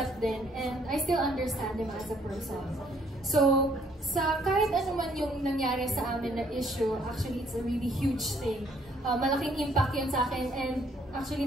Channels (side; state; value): both; normal; correlation 0.65